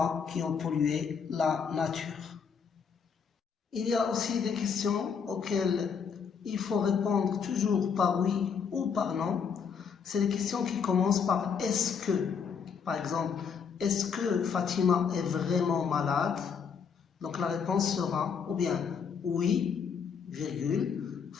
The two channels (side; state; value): right; quieter; 6.4 dB